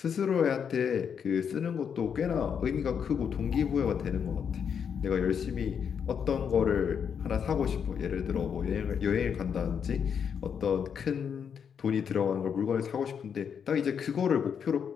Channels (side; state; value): right; quieter; 7.3 dB